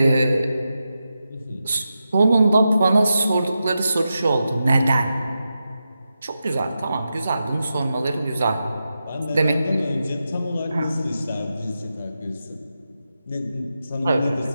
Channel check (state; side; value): inverted; both; correlation -0.89